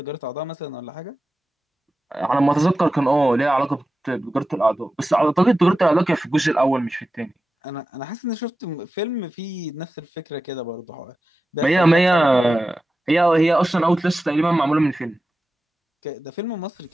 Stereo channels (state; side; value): normal; both; correlation 0.94